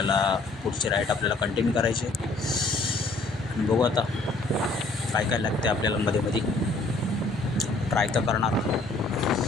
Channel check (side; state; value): right; quieter; 3.2 dB